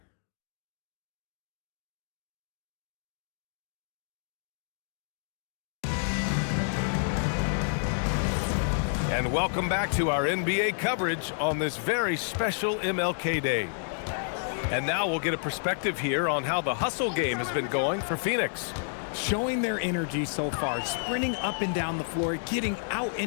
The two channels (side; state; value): right; silent; digital silence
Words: And welcome back to our NBA coverage on this very special MLK Day. And now we'll get a perspective here on how the hustle game has been going for Phoenix. Showing their energy so far, sprinting up and down the floor, getting out